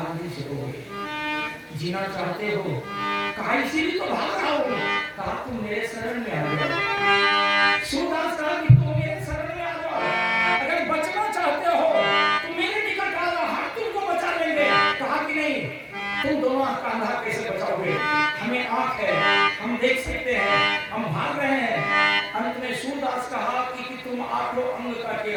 नहीं सकोगे। जीना चाहते हो? कहा इसीलिए तो भाग रहा हूँ। कहा तुम मेरे शरण में आ जाओ। सूरदास कहा कि तुम मेरे शरण में आ जाओ, अगर बचना चाहते हो तो मेरे निकट आ जाओ, हम तुमको बचा लेंगे। कहा कि नहीं, तुम दोनों का अंधा कैसे बचाओगे, हमें आंख है, हम देख सकते हैं, हम भाग रहे हैं। अंत में सूरदास कहा कि तुम 8 अंग का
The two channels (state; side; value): identical; both; correlation 1.00